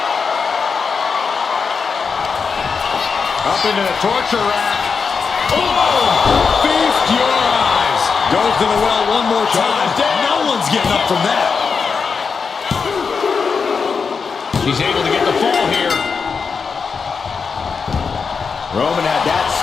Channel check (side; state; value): right; quieter; 5.5 dB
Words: Up into the torture rack. Oh! Feast your eyes. Goes to the well one more time. No one's getting up from that. She's able to get the fall here. Roman had that